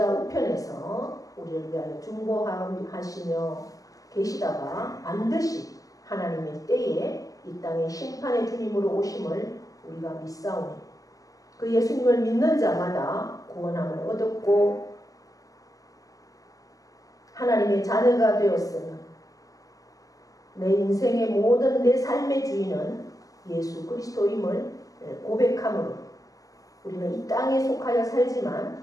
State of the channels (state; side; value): late; right; 0.17 ms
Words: 우편에서 우리를 위하여 중보하시며 계시다가 반드시 하나님의 때에 이 땅에 심판의 주님으로 오심을 우리가 믿사오니 그 예수님을 믿는 자마다 구원함을 얻었고 하나님의 자녀가 되었으며 내 인생의 모든 내 삶의 주인은 예수 그리스도임을 고백함으로 우리는 이 땅에 속하여